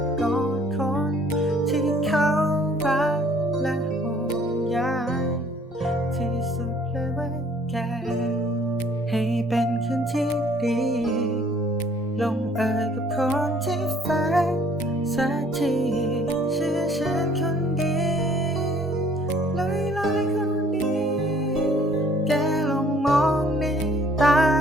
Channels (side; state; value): both; normal; correlation 0.58